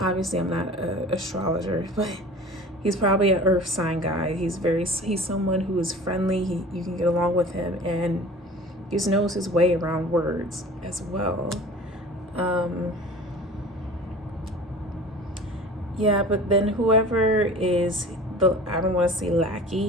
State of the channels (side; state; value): both; normal; correlation 0.41